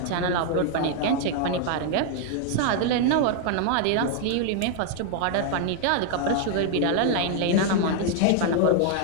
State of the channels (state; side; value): different; both; correlation 0.00